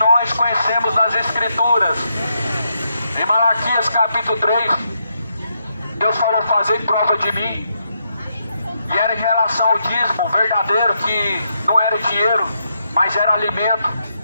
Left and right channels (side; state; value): both; inverted; correlation -0.80